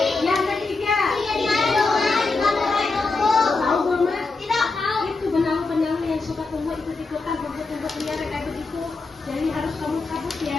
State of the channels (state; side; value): quieter; right; 3.8 dB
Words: Yang ketiga. Tahu belum Mas? Itu benalu-benalu yang suka tumbuh ikut-ikutan tumbuh-tumbuh liar kayak begitu. Jadi harus kamu cabut